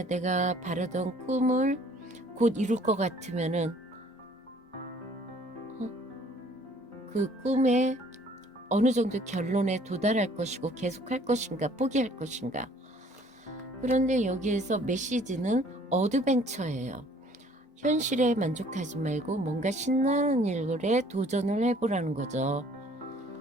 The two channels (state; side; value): normal; both; correlation 0.57